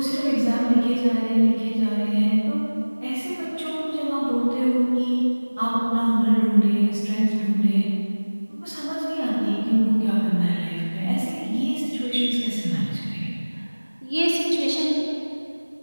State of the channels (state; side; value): inverted; both; correlation -1.00